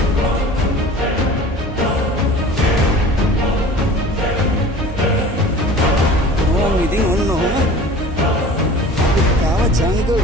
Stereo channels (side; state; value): both; normal; correlation 0.42